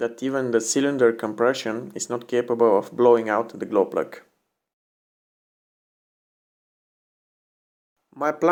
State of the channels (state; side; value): identical; both; correlation 1.00